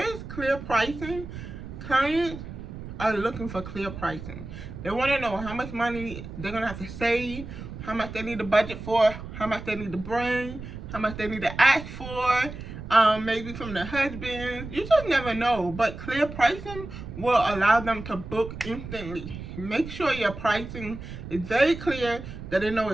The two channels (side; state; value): right; noise; rumble, 11 dB below the sound